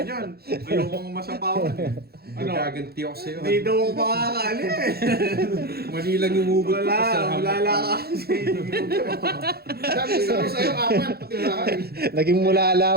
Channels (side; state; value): left; late; 0.46 ms